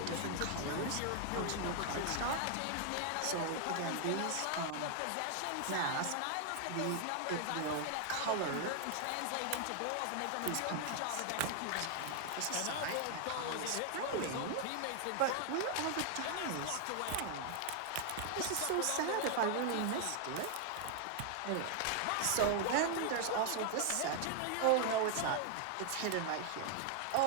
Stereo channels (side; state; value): both; different; correlation 0.00